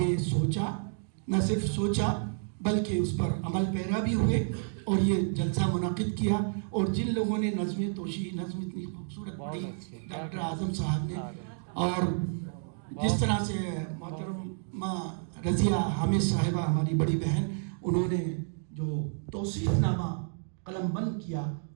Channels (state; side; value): silent; left; digital silence